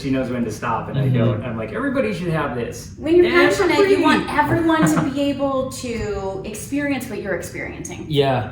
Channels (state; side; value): identical; both; correlation 1.00